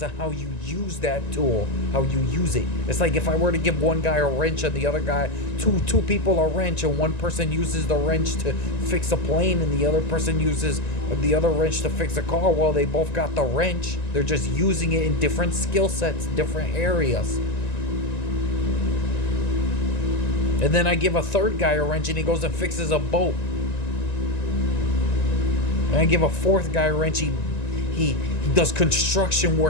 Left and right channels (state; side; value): late; right; 1.9 ms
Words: on how you use that tool, how you use it. It's like if I were to give one guy a wrench and the other guy, two people a wrench, and one person uses the wrench to fix a plane and the other person uses the other wrench to fix a car. Well, they both got the wrench. They're just using it in different skill sets, different areas. And then I give a third guy a wrench and he goes and fixes a boat. And I give a fourth guy a wrench, he does construction